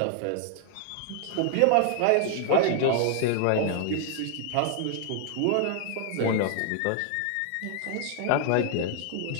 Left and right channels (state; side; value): different; both; correlation 0.00